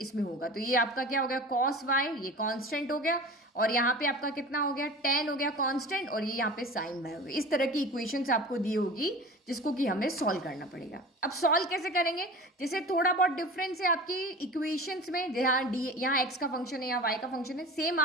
इसमें होगा। तो ये आपका क्या हो गया, cos y, ये कांस्टेंट हो गया, और यहाँ पे आपका कितना हो गया, tan हो गया कांस्टेंट, और ये यहाँ पे sin y हो गया। इस तरह की इक्वेशंस आपको दी होगी जिसको कि हमें सॉल्व करना पड़ेगा। अब सॉल्व कैसे करेंगे, जैसे थोड़ा बहुत डिफरेंस है आपकी इक्वेशंस में, जहाँ डी यहाँ x का फंक्शन है या y का फंक्शन है, सेम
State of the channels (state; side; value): normal; both; correlation 0.36